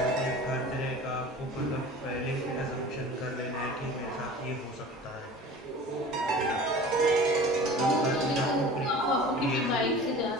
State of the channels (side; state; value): both; normal; correlation 0.40